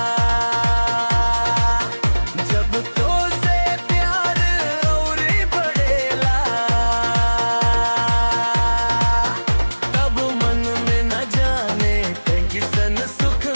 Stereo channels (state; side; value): inverted; both; correlation -1.00